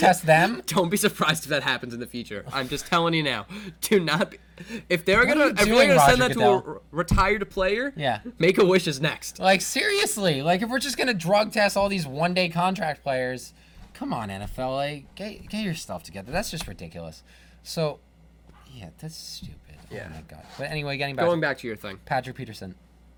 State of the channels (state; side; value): identical; both; correlation 1.00